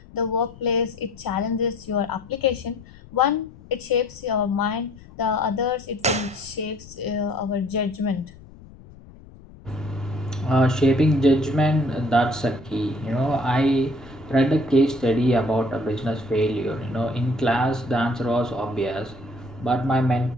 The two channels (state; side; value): noise; left; rumble, 20 dB below the sound